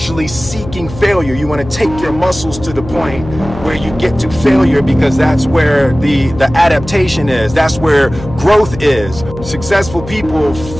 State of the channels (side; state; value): left; noise; hum, 12 dB below the sound